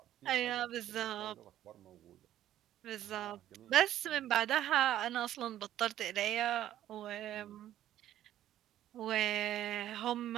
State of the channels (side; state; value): left; quieter; 12.4 dB